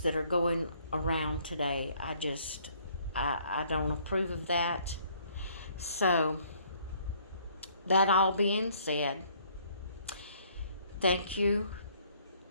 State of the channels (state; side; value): inverted; both; correlation -0.62